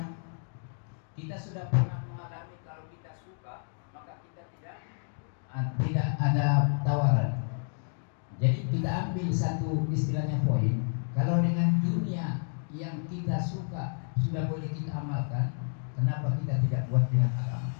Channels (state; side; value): silent; right; 58 dB below the other